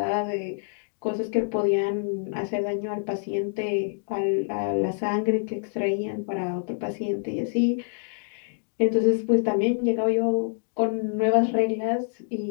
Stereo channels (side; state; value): right; silent; digital silence